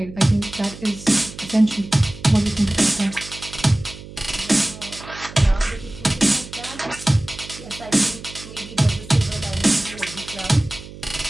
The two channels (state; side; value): noise; right; hum, 15 dB below the sound